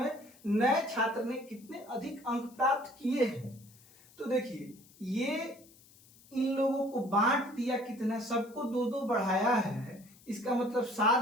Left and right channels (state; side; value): noise; left; hiss, 26 dB below the sound